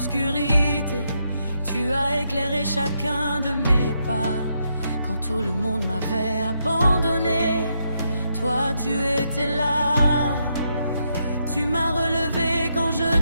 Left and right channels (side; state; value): both; inverted; correlation -0.79